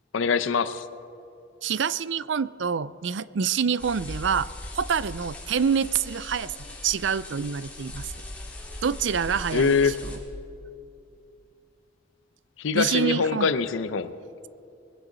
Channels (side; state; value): both; normal; correlation 0.01